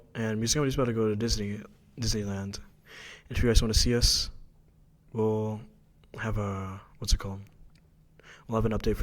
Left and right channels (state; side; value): identical; both; correlation 1.00